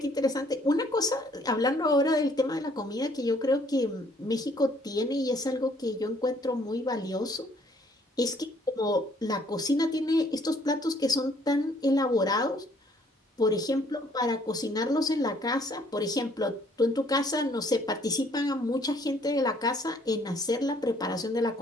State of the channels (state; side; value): normal; both; correlation 0.63